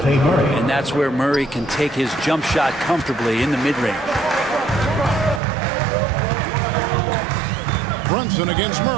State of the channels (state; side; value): drops out; left; at 5.4 s